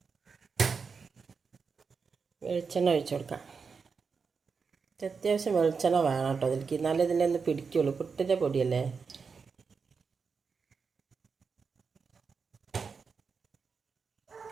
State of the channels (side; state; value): left; quieter; 5.3 dB